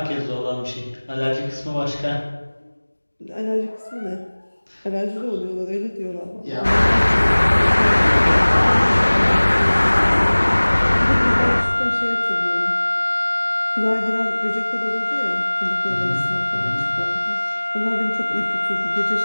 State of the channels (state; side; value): inverted; both; correlation -1.00